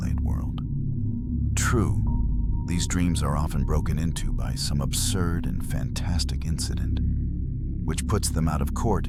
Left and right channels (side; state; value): both; identical; correlation 1.00